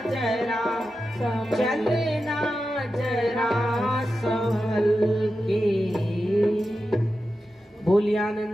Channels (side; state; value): both; normal; correlation 0.91